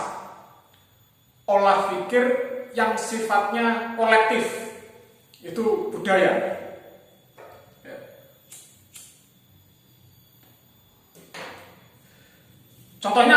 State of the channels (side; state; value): both; identical; correlation 1.00